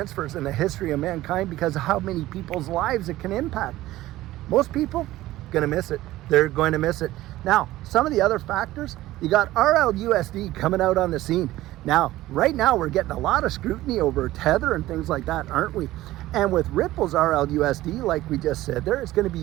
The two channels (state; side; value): quieter; left; 16.2 dB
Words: in the history of mankind, because of how many people's lives it can impact. Most people gonna miss it. They're going to miss it. Now, some of the other factors, you got RLUSD coming out on the scene. Now, right now, we're getting a lot of scrutiny over Tether and things like that, aren't we? And with Ripple's RLUSD, like we just said there, it's going to